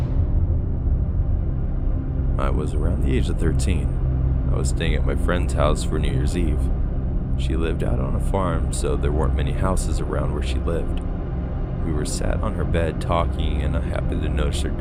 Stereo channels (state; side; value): identical; both; correlation 1.00